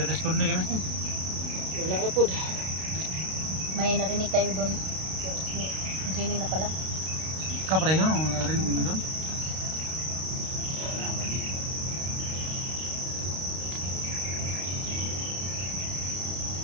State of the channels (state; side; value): late; left; 32 ms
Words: respond ni kami. Wala na pod. May narinig tayo doon. Pero si Jenny na pala. Ka pareho, narinig mo doon?